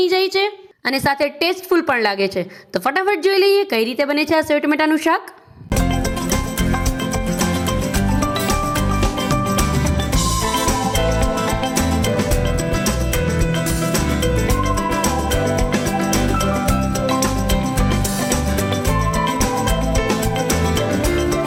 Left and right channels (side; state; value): both; identical; correlation 1.00